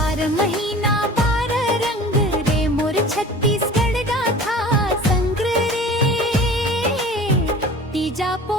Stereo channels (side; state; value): both; normal; correlation 0.42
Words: महीना 12 रंग रे मोर छत्तीसगढ़ गाथा संग रे, तीजा